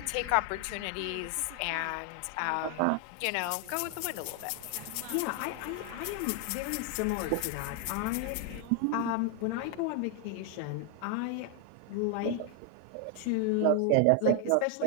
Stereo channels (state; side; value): different; both; correlation 0.00